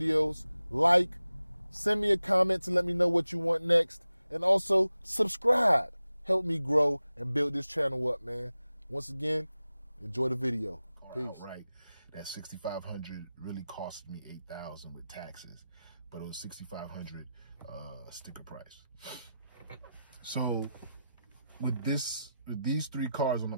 like, send me a comment to let me know what you want next, and also subscribe. Help me grow and build this channel up, man. Once again, enjoy the video. Peace. All right, that $6,500 really cost me $8,000 with taxes, but it was $6,500 sticker price. So with these 3 cars on the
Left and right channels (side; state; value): both; inverted; correlation -0.92